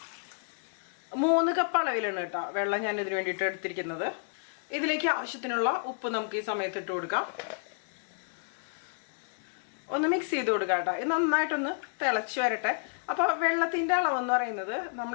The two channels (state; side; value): silent; right; 57 dB below the other